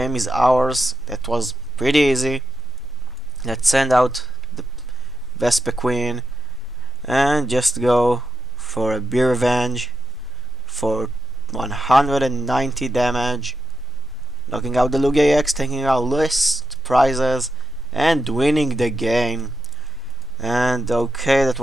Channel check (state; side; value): normal; both; correlation 0.96